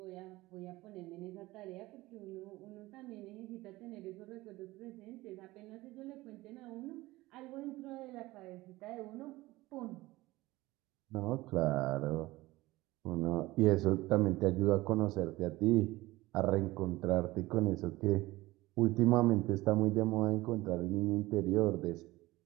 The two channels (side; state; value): left; quieter; 19.1 dB